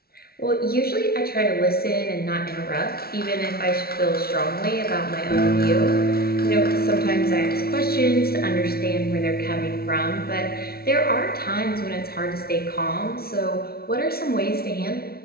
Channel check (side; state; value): right; late; 0.44 ms